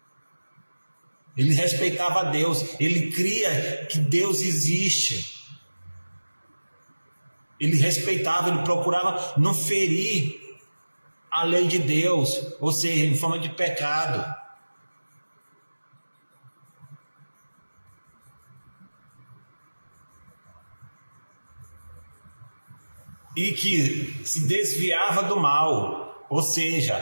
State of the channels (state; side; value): inverted; both; correlation -1.00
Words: Ele respeitava a Deus, ele cria que Deus existe. Ele respeitava, ele procurava não ferir a lei de Deus, ou seja, em forma de pecado. E que se desviava do mal, ou